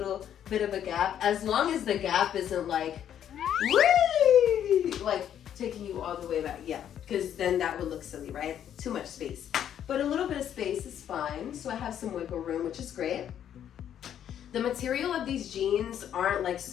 bit of a gap, as long as the gap isn't like, whee! Like taking you all the way back. Yeah, because then that would look silly, right? Too much space. But a little bit of space is fine. So I have some wiggle room, which is great. The material of these jeans aren't like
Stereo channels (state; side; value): quieter; right; 9.9 dB